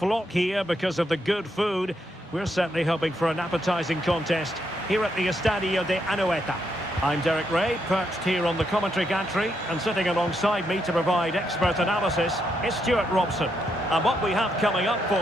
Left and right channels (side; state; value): both; normal; correlation 0.79